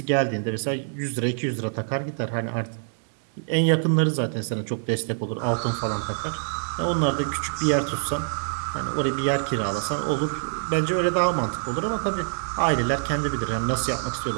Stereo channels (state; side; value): silent; left; 62 dB below the other